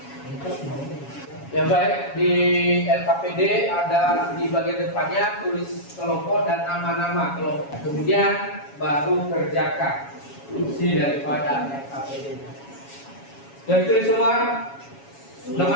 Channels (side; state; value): right; late; 7.2 ms